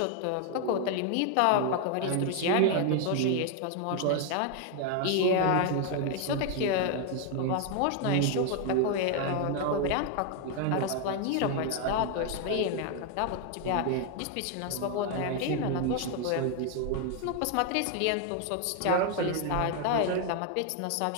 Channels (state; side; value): different; both; correlation 0.01